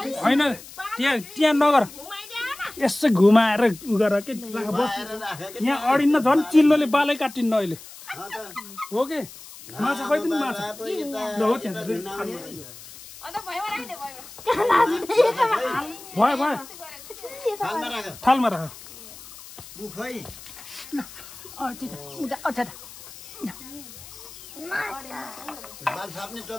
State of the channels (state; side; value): noise; left; hiss, 17 dB below the sound